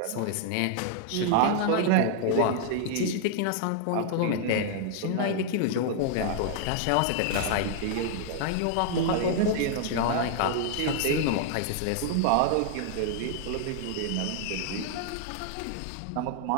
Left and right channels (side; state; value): both; different; correlation 0.00